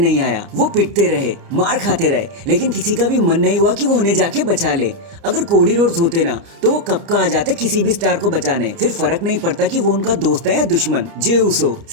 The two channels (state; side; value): late; left; 29 ms